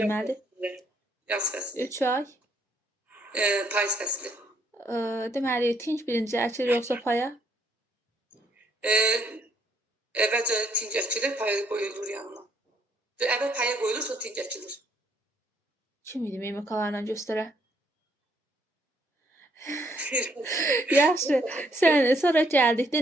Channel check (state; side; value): normal; both; correlation 0.69